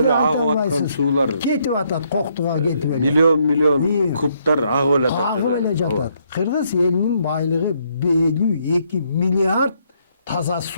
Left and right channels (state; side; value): inverted; both; correlation -0.72